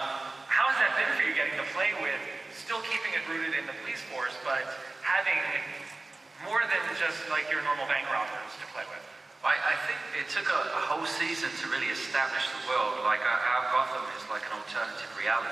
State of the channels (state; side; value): quieter; left; 3.1 dB